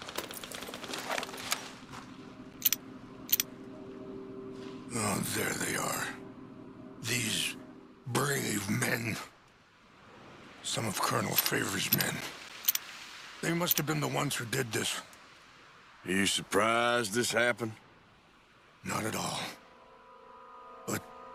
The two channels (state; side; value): identical; both; correlation 1.00